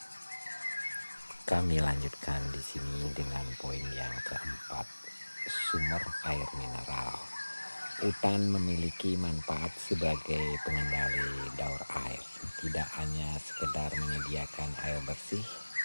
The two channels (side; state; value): both; inverted; correlation -1.00